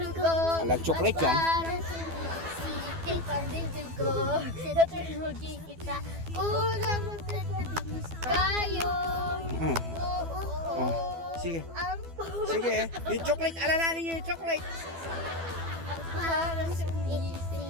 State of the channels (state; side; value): late; left; 12 ms